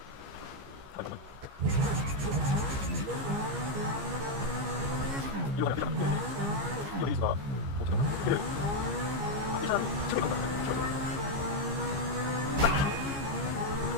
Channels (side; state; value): left; late; 15 ms